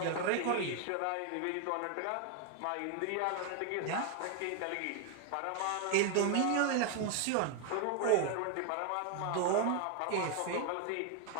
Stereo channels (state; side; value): different; both; correlation 0.01